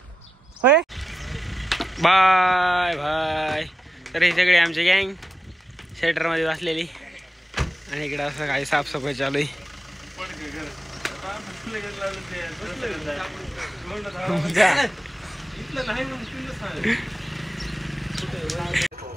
होय बाय बाय. तर हे सगळे आमचे गँग शेटर मध्ये बसलेली आणि इकडे असं काही साफसफाई चालू आहे.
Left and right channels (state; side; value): normal; both; correlation 0.90